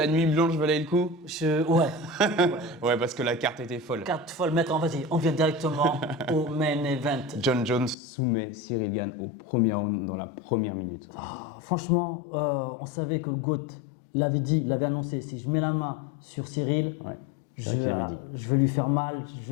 nuit blanche valait le coup? Ouais. Ouais, parce que la carte était folle. Carte folle, maître, vas-y, on vient directement au main event. John Jones soumet Cyril Gane au premier round dans la première minute. Franchement, on savait que le GOAT l'avait dit, l'avait annoncé. Si je mets la main sur Cyril, Ouais, je, c'est vrai qu'il l'avait dit. je vais lui faire mal,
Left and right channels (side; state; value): right; drops out; at 8.0 s